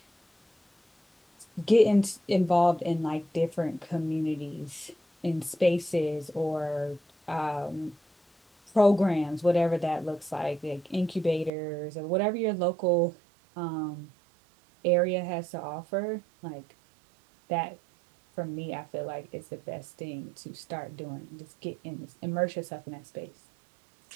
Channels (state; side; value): drops out; left; at 11.5 s